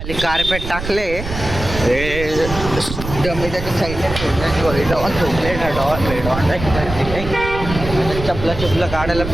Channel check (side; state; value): right; noise; rumble, 8 dB below the sound